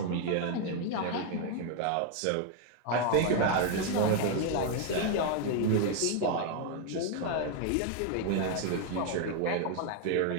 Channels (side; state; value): both; different; correlation 0.01